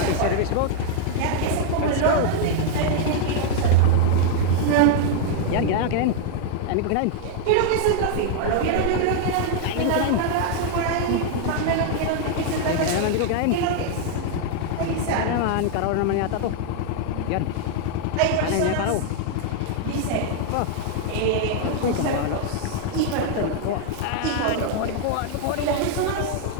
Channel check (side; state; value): both; different; correlation 0.00